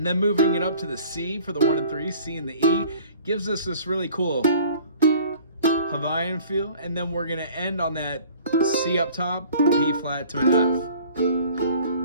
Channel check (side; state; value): both; inverted; correlation -0.50